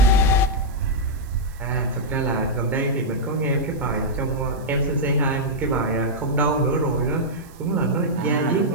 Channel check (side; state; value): right; noise; hiss, 26 dB below the sound